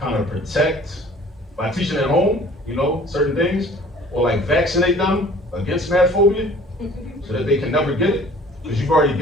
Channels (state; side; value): normal; both; correlation 0.51